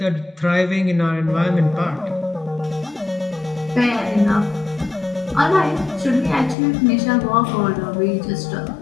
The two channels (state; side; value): drops out; right; at 6.6 s